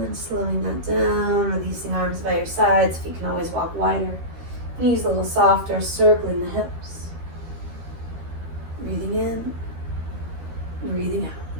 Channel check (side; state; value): left; late; 13 ms